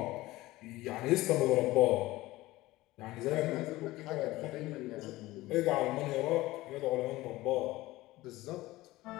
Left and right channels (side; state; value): right; quieter; 18.3 dB